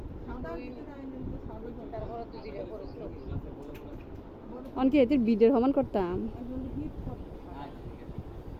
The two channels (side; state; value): both; identical; correlation 1.00